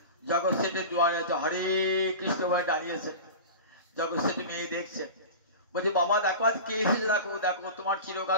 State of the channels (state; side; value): inverted; both; correlation -0.31